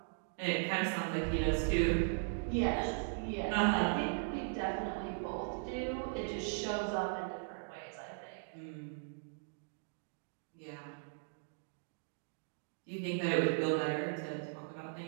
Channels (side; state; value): left; silent; digital silence